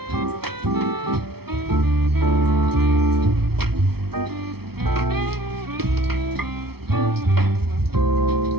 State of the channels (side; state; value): left; late; 0.96 ms